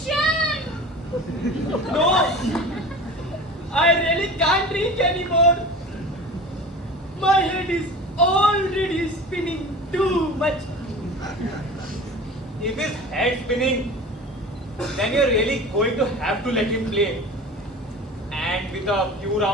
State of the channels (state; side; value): normal; both; correlation 0.36